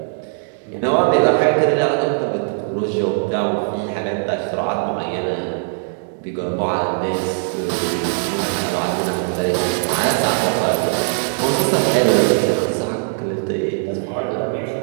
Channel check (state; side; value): silent; left; digital silence